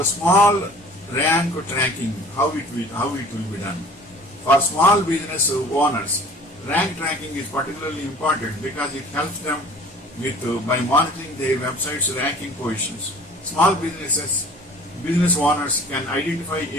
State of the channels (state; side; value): normal; both; correlation 0.47